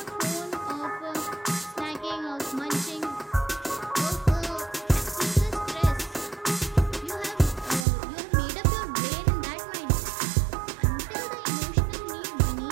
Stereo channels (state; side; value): drops out; left; at 7.9 s